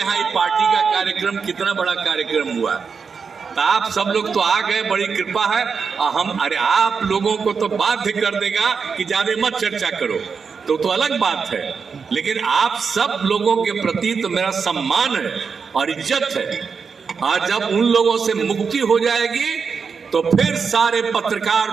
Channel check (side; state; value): left; quieter; 5.7 dB